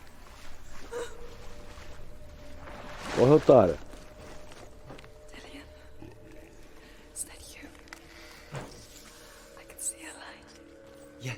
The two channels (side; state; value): both; identical; correlation 1.00